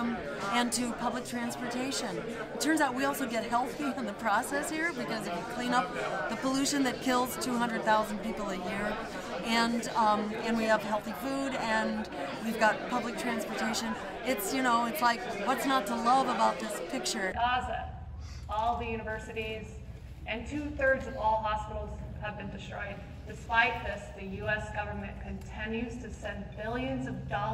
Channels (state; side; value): identical; both; correlation 1.00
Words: and to public transportation. It turns out we also get healthy in the process here, because if you clean up the pollution that kills 200,000 people a year, and we have healthy food, and we've got public transportation, it's, you know, it's like, what's not to love about this picture? Gaza, all the universities, and 2/3 of all hospitals have been destroyed. Despite this, the U.S. government continues to send billions of